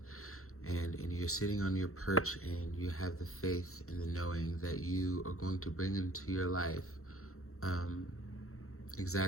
And you're sitting on your perch, and you have the faith and the knowing that you are going to bring into your life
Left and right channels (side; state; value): right; late; 0.63 ms